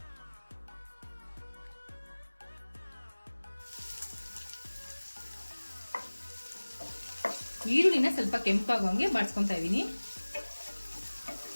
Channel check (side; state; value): both; inverted; correlation -1.00